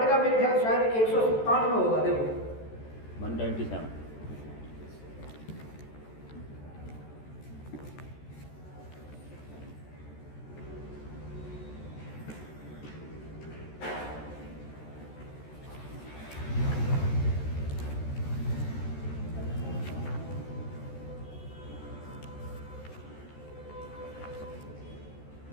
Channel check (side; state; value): right; late; 14 ms